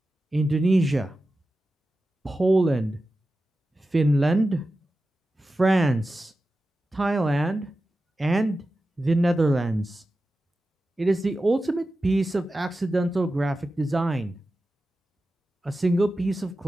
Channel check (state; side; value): normal; both; correlation 0.93